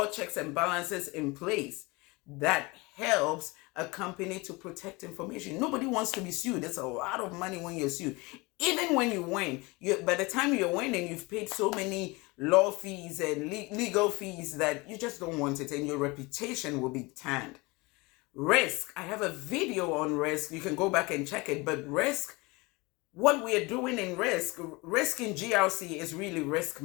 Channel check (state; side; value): quieter; right; 24.8 dB